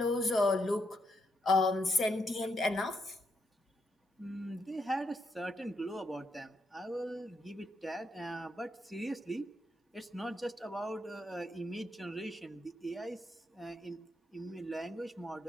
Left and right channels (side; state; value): both; normal; correlation 0.79